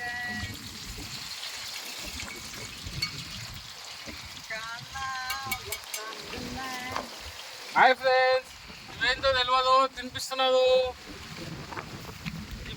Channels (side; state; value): both; identical; correlation 1.00